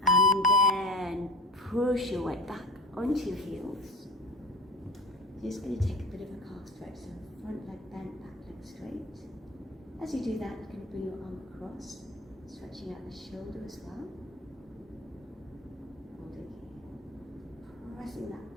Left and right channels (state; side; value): normal; both; correlation 0.34